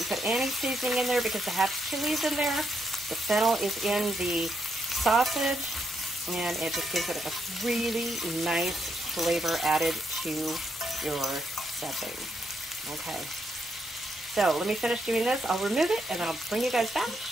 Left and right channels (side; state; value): both; normal; correlation 0.79